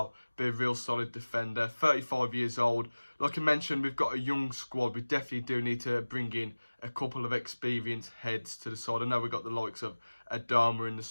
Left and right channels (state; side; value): inverted; both; correlation -1.00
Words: be a real solid defender. 35 years old. Like I mentioned, we've got a young squad. We definitely do need to bring in a couple of experienced heads to the side. I know we've got the likes of Adama in the